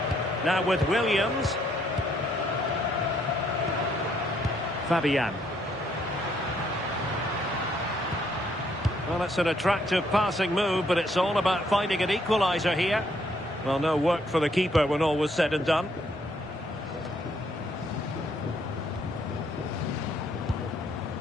Now with Williams. Fabian. Well, it's an attractive passing move, but it's all about finding an equaliser here. Well, no work for the keeper when all was said and done.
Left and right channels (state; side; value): normal; both; correlation 0.70